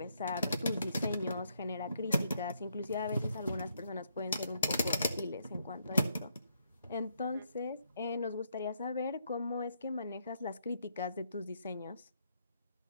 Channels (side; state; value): both; inverted; correlation -0.74